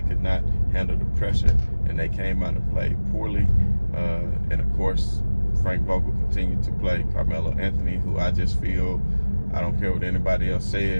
could not handle the pressure, and they came out and played poorly. And of course, Frank Vogel continued to play Carmelo Anthony, who I just feel, I don't care what anybody else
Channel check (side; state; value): both; inverted; correlation -1.00